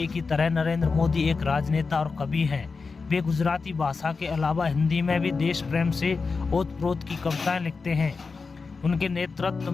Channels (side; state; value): right; quieter; 4.5 dB